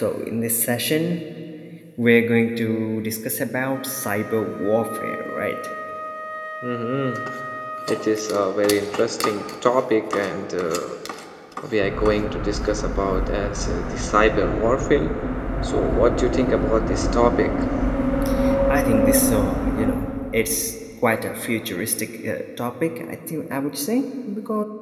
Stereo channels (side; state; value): both; identical; correlation 1.00